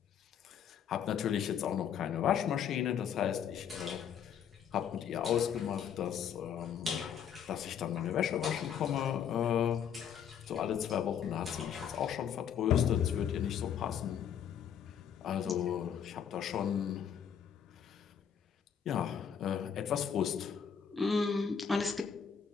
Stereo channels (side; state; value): right; quieter; 8.2 dB